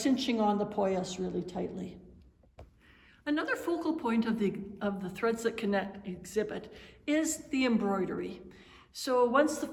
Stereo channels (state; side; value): identical; both; correlation 1.00